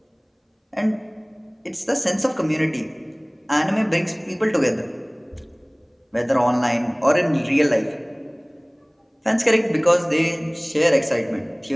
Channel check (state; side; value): identical; both; correlation 1.00